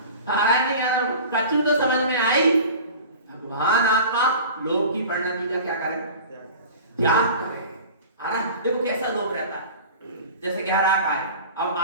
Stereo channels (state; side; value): inverted; both; correlation -0.39